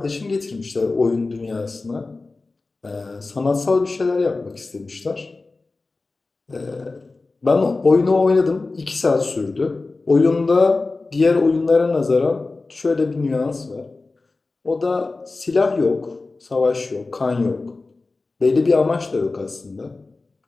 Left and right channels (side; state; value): right; quieter; 3.6 dB